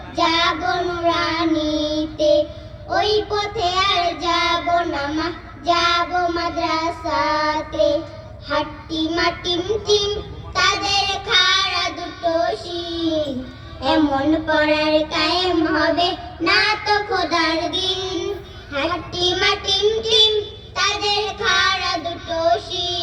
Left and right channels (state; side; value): identical; both; correlation 1.00